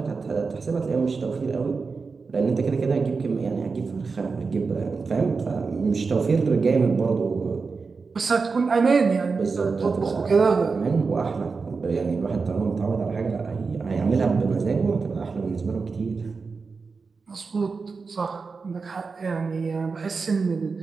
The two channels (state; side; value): quieter; left; 4.7 dB